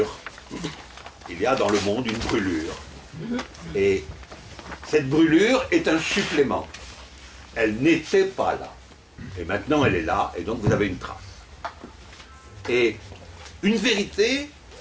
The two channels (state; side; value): identical; both; correlation 1.00